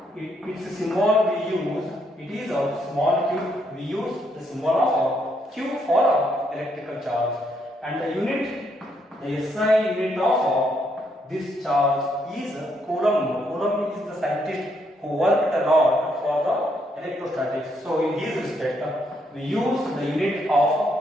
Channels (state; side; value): normal; both; correlation 0.74